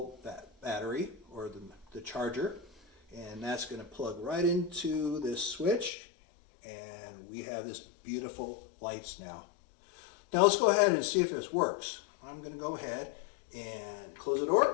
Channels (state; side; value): drops out; right; at 5.9 s